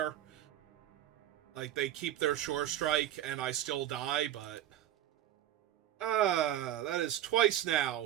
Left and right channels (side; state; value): left; quieter; 12.3 dB